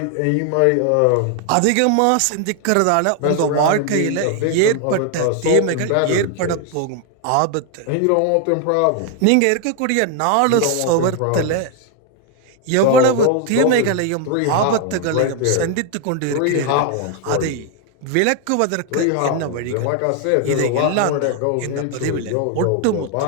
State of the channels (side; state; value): both; different; correlation 0.01